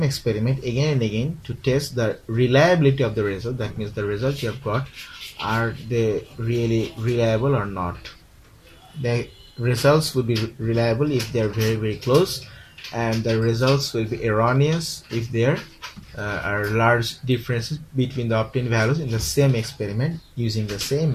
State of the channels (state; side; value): identical; both; correlation 1.00